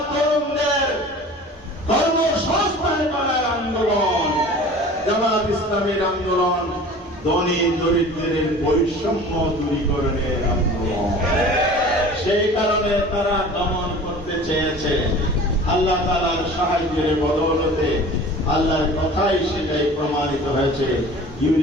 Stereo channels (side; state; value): both; normal; correlation 0.42